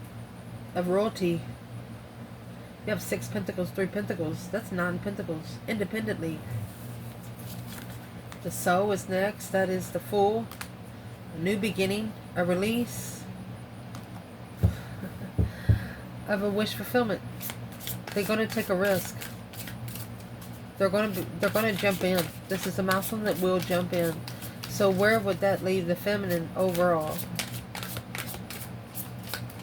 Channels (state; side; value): identical; both; correlation 1.00